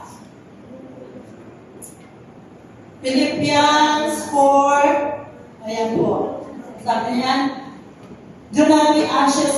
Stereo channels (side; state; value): both; identical; correlation 1.00